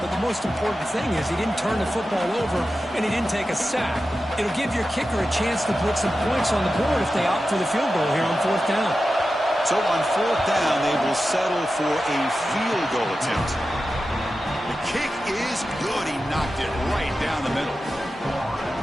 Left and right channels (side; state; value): both; normal; correlation 0.92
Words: but the most important thing is he didn't turn the football over and he didn't take a sack. It'll give your kicker a chance to put some points on the board if they opt for the field goal here on 4th down. So on 4th down, they will settle for a field goal attempt. The kick is good. He knocked it right down the middle.